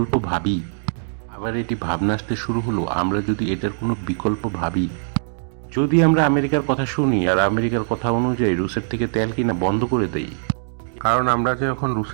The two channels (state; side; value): silent; left; digital silence